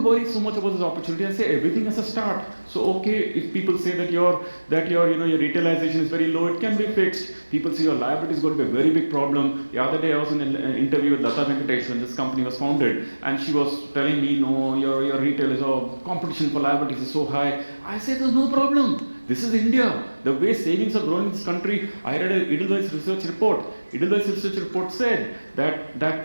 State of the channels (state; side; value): inverted; both; correlation -1.00